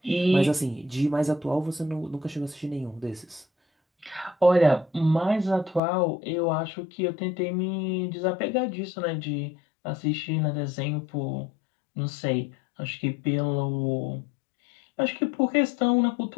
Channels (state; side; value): drops out; right; at 5.8 s